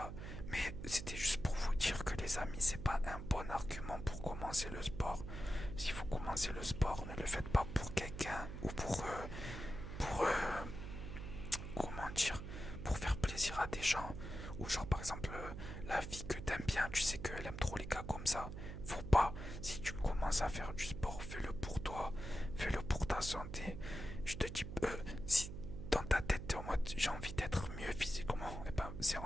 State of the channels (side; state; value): right; noise; hum, 7 dB below the sound